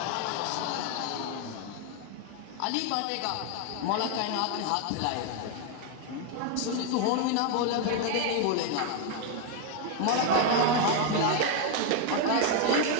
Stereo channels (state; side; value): different; both; correlation 0.01